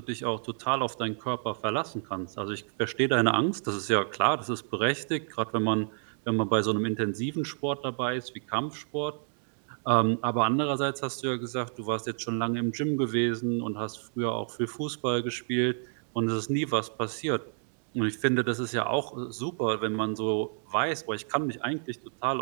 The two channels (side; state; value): left; silent; 58 dB below the other